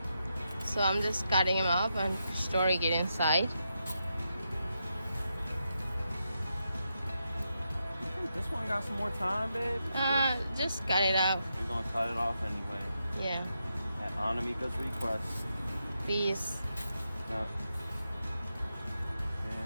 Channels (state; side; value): inverted; both; correlation -0.85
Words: so I'm just cutting them up and storing it inside. You think this one got some more time, babe? Just cut it out. We're gonna cut it off anyway. Yeah, At Anamika's request. please. Yep.